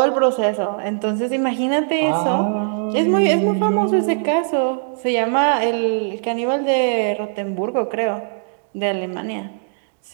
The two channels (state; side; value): silent; left; digital silence